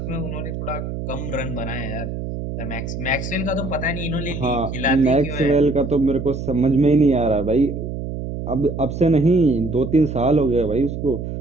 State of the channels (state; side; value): noise; right; hum, 6 dB below the sound